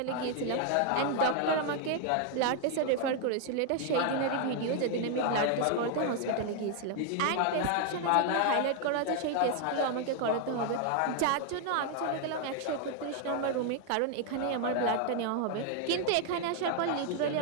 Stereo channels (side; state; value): both; different; correlation 0.00